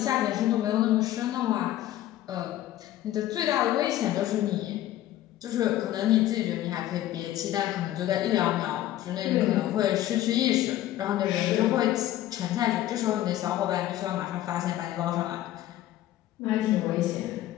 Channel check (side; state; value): right; quieter; 13.7 dB